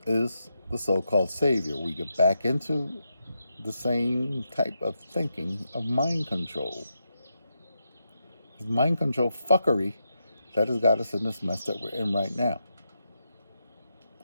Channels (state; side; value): inverted; both; correlation -0.85